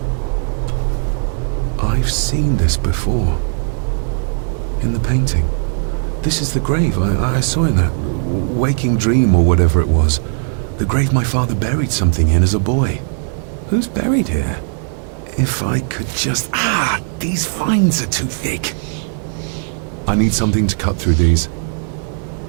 I've seen this before. In the painting. This is the grave I saw in that waking dream or whatever it was. The grave my father buried something in as a boy. Who's buried here? If I could just... Ah! These vines are too thick. I need something to cut through these.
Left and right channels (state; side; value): silent; left; 61 dB below the other